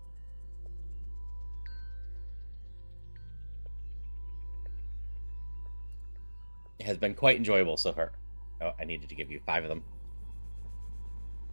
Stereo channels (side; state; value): both; inverted; correlation -1.00